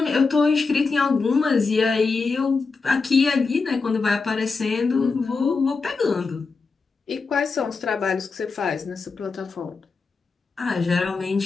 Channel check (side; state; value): right; quieter; 4.5 dB